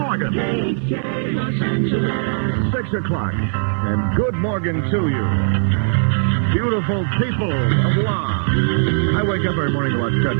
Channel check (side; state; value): left; silent; digital silence